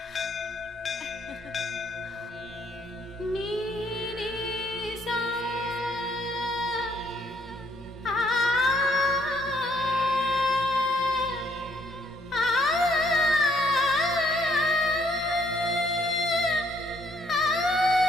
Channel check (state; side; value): normal; both; correlation 0.67